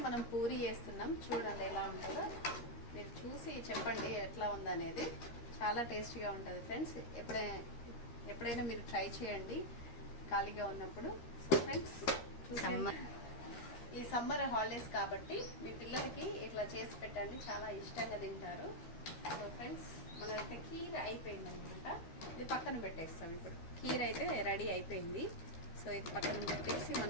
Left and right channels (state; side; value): late; right; 13 ms